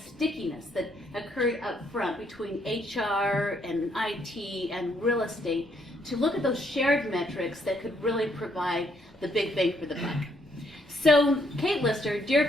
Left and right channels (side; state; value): both; normal; correlation 0.71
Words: that occurred up front between HR and IT and real estate to look at those shared metrics that could really provide the big bang for the buck. So Kate Lister,